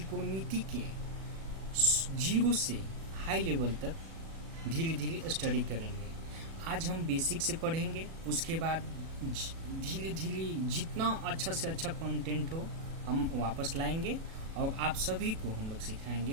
के जीरो से हाई लेवल तक धीरे धीरे स्टडी करेंगे। आज हम बेसिक से पढ़ेंगे, उसके बाद धीरे धीरे जितना अच्छा से अच्छा कंटेंट हो हम वापस लाएंगे और आप सभी को हम लोग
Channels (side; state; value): left; late; 36 ms